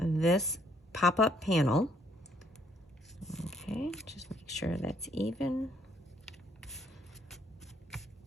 pop-up panel. Okay, just make sure that's even.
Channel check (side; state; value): both; normal; correlation 0.68